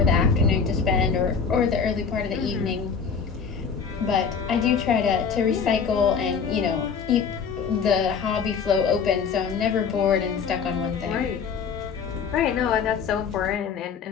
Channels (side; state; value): right; quieter; 6.2 dB